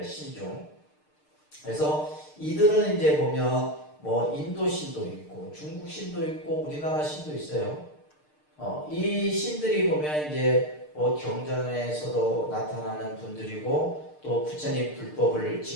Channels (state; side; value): late; right; 6.6 ms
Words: 신중. 그래서 이들은 이제 보면 뭐 인도 신도 있고 중국 신도 있고 우리나라 신도 있어요. 이 신들이 보면 이제 뭐 경전에서도 나타나는 분들이고 또 부처님 불법을